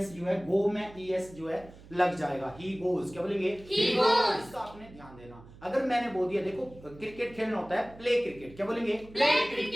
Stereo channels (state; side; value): noise; right; hum, 20 dB below the sound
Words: जो है, गो में ईएस जो है लग जाएगा. He goes. क्या बोलेंगे? He goes. इसका आपने ध्यान देना. अगर मैंने बोल दिया, देखो क्रिकेट खेलना होता है प्ले क्रिकेट. क्या बोलेंगे? Play